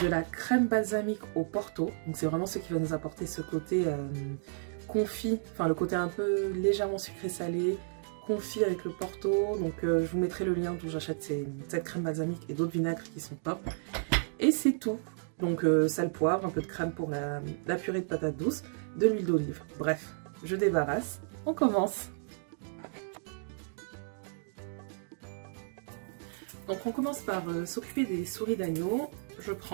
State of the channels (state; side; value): silent; left; digital silence